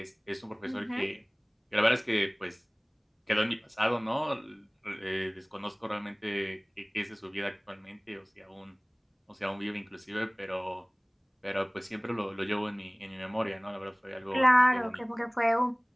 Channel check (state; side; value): identical; both; correlation 1.00